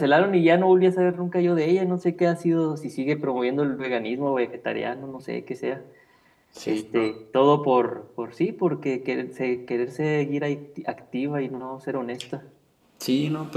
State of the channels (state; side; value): identical; both; correlation 1.00